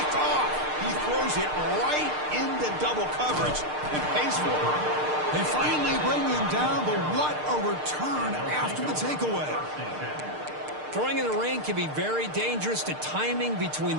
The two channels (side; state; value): left; late; 6.6 ms